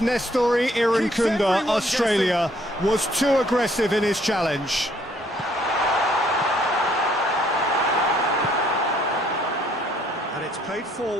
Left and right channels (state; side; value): normal; both; correlation 0.65